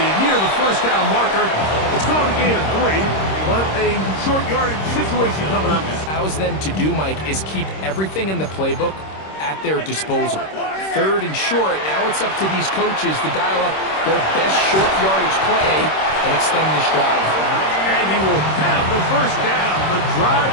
near the first down marker. It's called a gain of 3, but a short yardage situation coming up. Allows them to do, Mike, is keep everything in the playbook at their disposal. 3rd and short, now it's up to these coaches to dial up their best short yardage play and extend this drive. And he will have the first down. The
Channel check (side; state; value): right; late; 26 ms